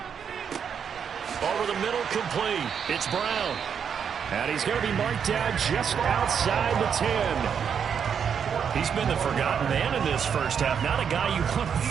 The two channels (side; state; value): left; quieter; 7.3 dB